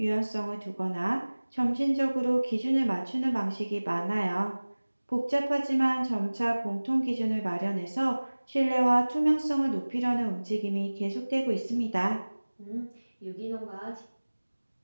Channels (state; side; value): inverted; both; correlation -1.00